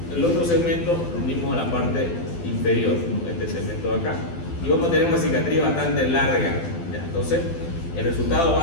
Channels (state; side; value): late; right; 12 ms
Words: el otro segmento lo unimos a la parte inferior, ¿no? Este segmento de acá, y vamos a tener una cicatriz bastante larga, ¿ya? Entonces el resultado va